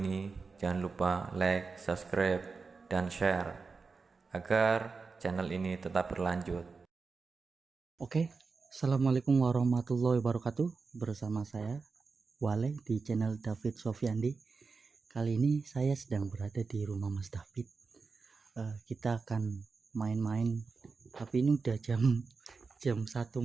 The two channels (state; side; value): quieter; left; 4.6 dB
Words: jangan lupa like, subscribe, dan share agar channel ini tetap berlanjut. Oke, assalamualaikum warahmatullahi wabarakatuh. Bersama saya Wale di channel David Sofiandi. Kali ini saya sedang berada di rumah Mas David. Kita akan main-main, tapi ini udah jam 1